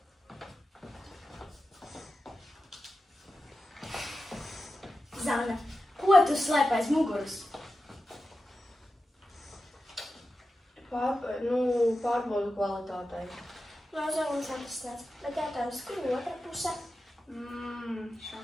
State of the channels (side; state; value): both; normal; correlation 0.92